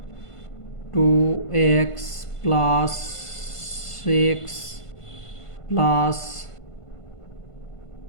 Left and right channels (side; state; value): right; late; 1.5 ms